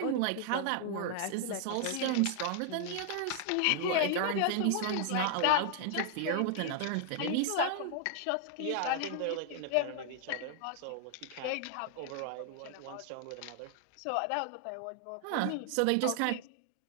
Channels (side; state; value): both; different; correlation 0.00